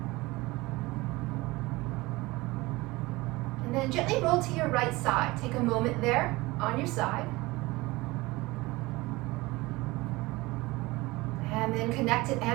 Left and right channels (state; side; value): quieter; left; 21.4 dB